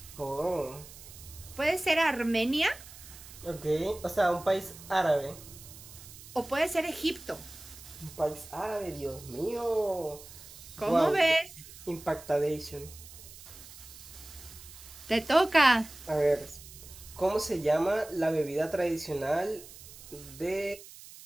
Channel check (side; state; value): right; noise; hiss, 17 dB below the sound